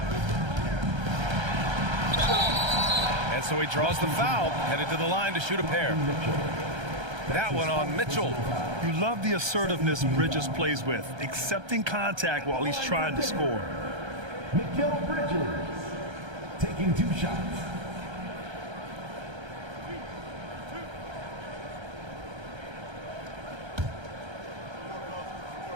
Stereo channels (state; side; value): late; left; 1.3 ms